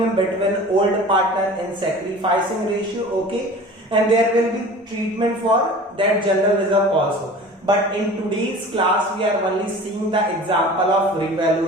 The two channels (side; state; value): both; normal; correlation 0.41